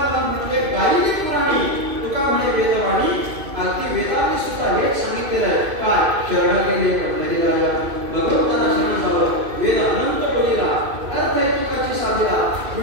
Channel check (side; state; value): left; late; 2.6 ms